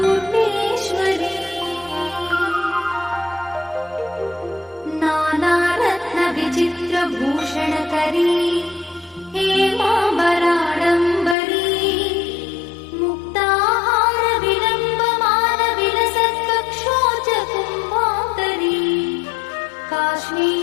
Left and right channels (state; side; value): drops out; right; at 11.4 s